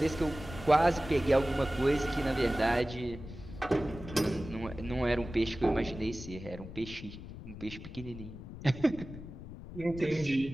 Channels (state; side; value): noise; left; rumble, 12 dB below the sound